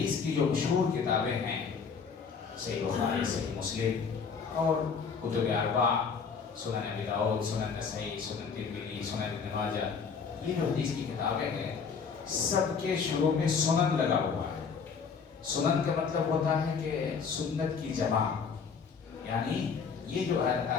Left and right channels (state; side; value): quieter; right; 5.8 dB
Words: کی جو مشہور کتابیں ہیں، صحیح بخاری، صحیح مسلم اور کتب اربعہ، سنن ابی داؤد، سنن نسائی، سنن ترمذی، سنن ابن ماجہ، یہ جو حدیث کی کتابیں ہیں سب کے شروع میں سنن لگا ہوا ہے۔ سنن کا مطلب ہوتا ہے کہ سنت کی جمع، یعنی یہ جو